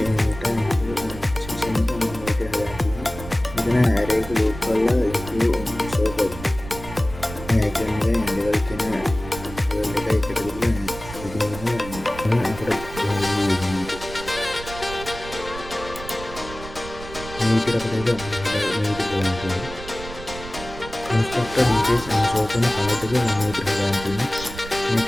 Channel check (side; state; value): right; noise; rumble, 13 dB below the sound